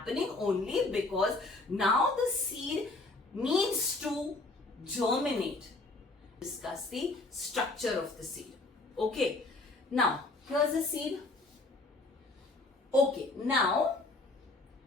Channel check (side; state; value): right; quieter; 3.1 dB